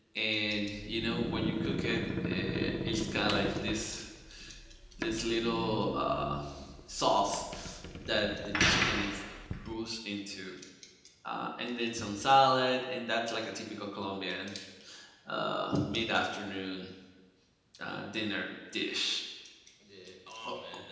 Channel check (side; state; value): both; identical; correlation 1.00